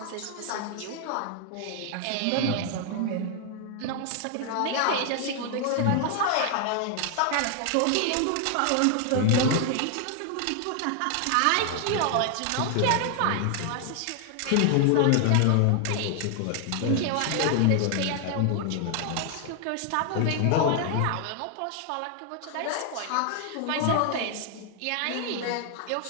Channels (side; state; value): both; different; correlation 0.00